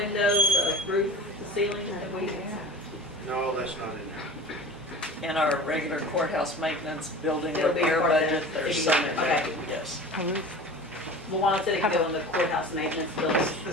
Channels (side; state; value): both; normal; correlation 0.38